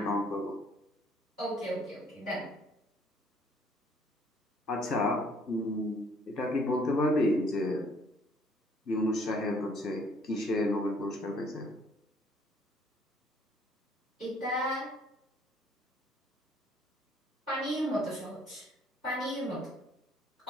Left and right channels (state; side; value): normal; both; correlation 0.61